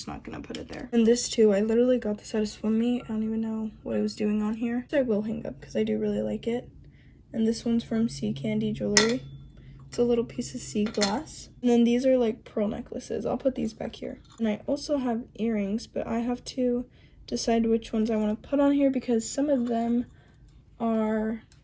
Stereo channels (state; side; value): identical; both; correlation 1.00